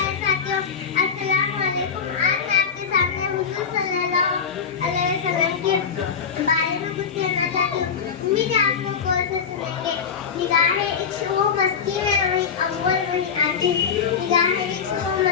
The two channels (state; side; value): quieter; right; 6.6 dB